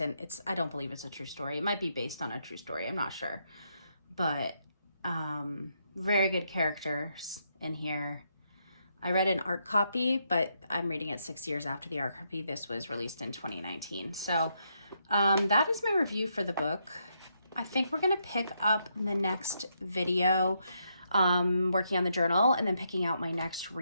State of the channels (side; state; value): both; inverted; correlation -0.78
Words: I don't believe it's a true story. It might be based on a true story. I'm not sure, but, very good characters in here. I read an art copy, but I'm reading it 6 years after the art copy. This was released in 2019. So, that is my review for the book. I think we're going to pick up the next video, working on the journal and then picking out my next